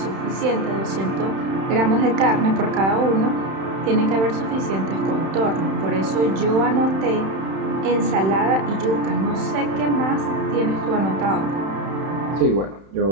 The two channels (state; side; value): late; left; 31 ms